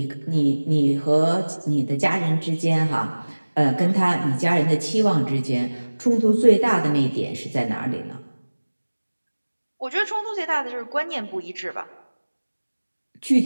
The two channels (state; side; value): inverted; both; correlation -1.00